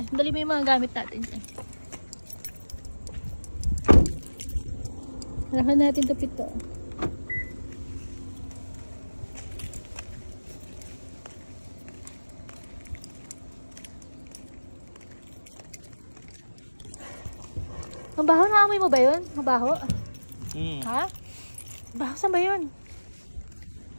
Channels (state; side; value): inverted; both; correlation -1.00